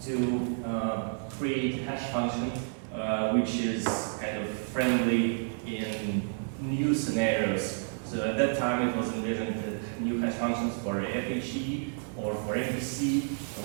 to create hash function which is kind of friendly in new scenarios. So at that time it was envisioned that new hash functions for FHE or for MPC,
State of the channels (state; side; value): silent; left; 58 dB below the other